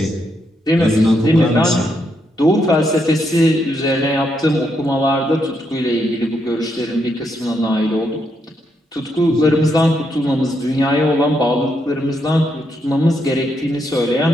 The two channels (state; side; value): normal; both; correlation 0.79